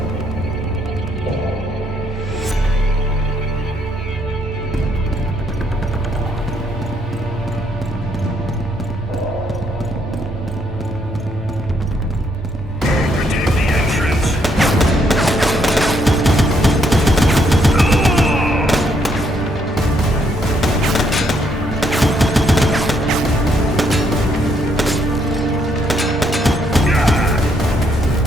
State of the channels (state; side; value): normal; both; correlation 0.72